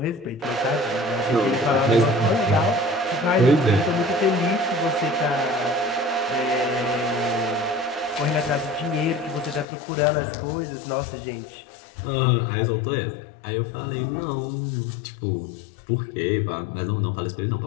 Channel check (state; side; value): drops out; right; at 9.7 s